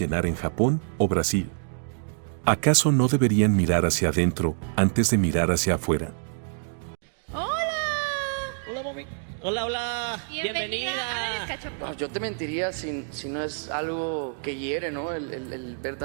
en Japón o Brasil? ¿Acaso no deberían mirar hacia adentro antes de mirar hacia afuera? Hola, mami. Hola, hola. Bienvenida. No, yo te mentiría si no es algo que hiere, ¿no? El ver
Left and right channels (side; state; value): left; silent; digital silence